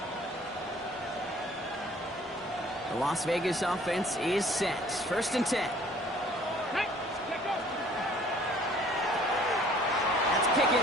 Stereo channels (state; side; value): normal; both; correlation 0.55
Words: The Las Vegas offense is set. 1st and 10. That's